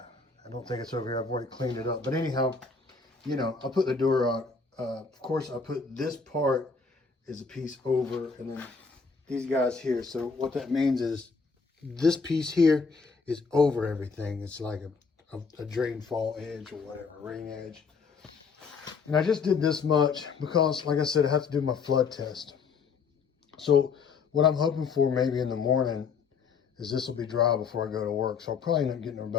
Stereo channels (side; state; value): right; quieter; 5.1 dB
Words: don't think it's over here. I've already cleaned it up. But anyhow, you know, I put the Durock. Of course, I put this part is a piece over, and then these guys here. So what that means is this piece here is over everything. It's like a drain fall edge or whatever, rain edge. And I just did this much because, like I said, I have to do my flood test. So what I'm hoping for maybe in the morning is this will be dry before I go to work. So I'll probably end up